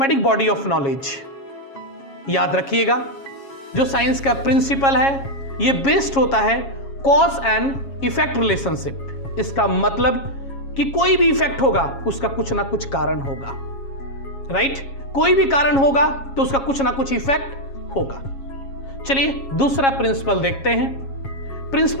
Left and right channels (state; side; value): late; right; 7.3 ms